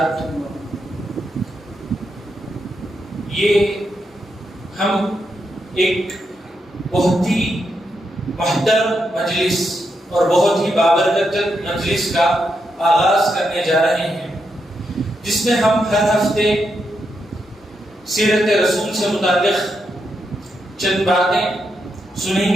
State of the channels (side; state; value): both; normal; correlation 0.83